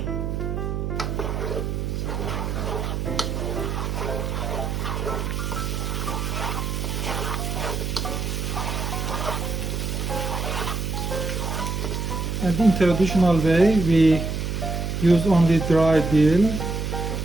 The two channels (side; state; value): right; noise; hum, 2 dB below the sound